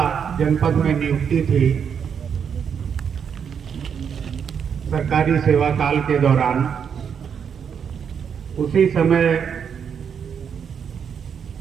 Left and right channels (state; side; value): quieter; left; 7.3 dB